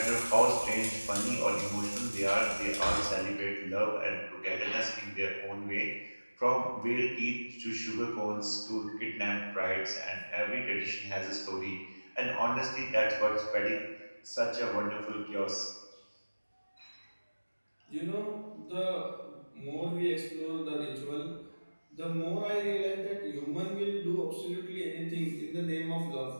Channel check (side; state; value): both; inverted; correlation -1.00